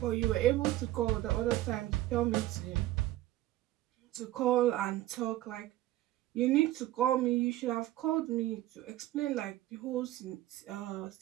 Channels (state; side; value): quieter; left; 15.4 dB